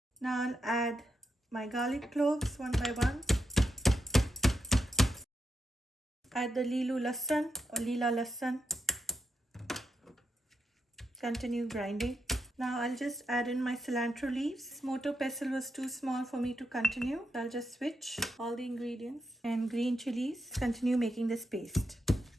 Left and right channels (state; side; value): normal; both; correlation 0.84